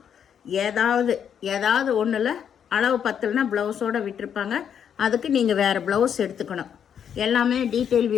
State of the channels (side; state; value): right; quieter; 8.3 dB